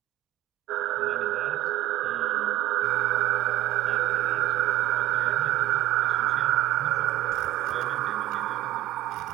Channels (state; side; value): quieter; left; 15.1 dB